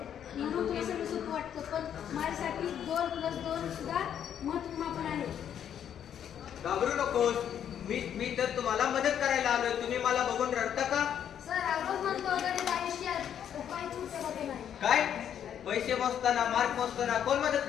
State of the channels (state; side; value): quieter; right; 9.3 dB